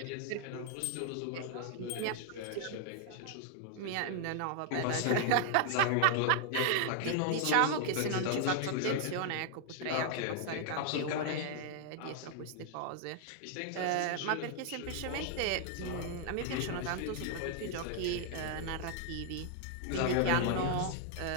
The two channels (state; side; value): different; both; correlation 0.00